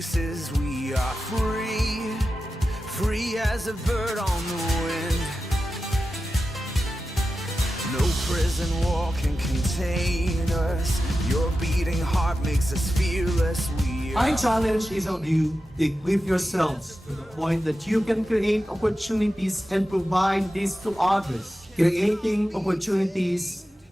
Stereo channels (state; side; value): normal; both; correlation 0.92